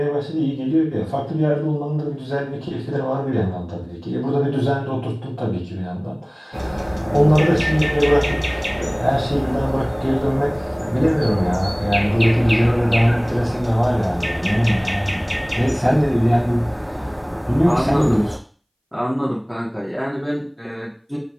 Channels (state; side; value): identical; both; correlation 1.00